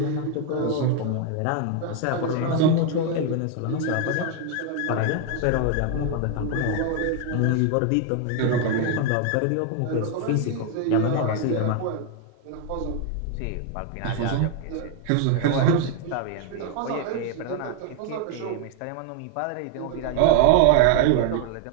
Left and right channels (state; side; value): different; both; correlation 0.01